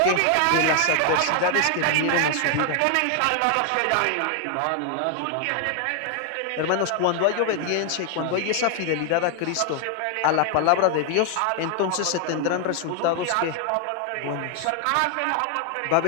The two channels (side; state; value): both; different; correlation 0.00